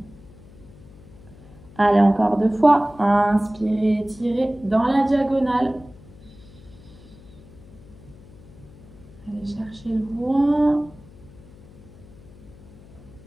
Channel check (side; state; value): left; noise; hum, 21 dB below the sound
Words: Allez, encore 2 fois. Inspirez, étirez dans la diagonale. Allez chercher loin.